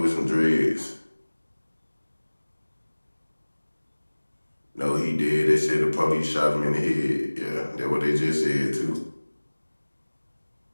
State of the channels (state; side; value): inverted; both; correlation -1.00